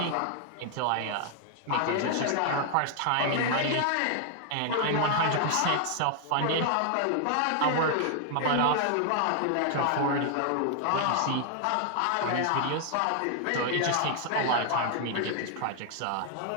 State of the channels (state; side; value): different; both; correlation 0.00